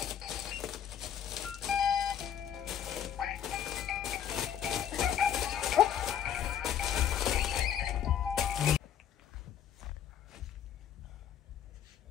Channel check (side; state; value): right; quieter; 9.3 dB